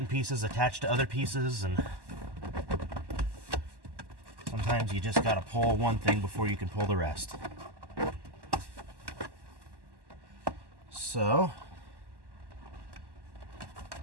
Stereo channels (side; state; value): left; late; 1.1 ms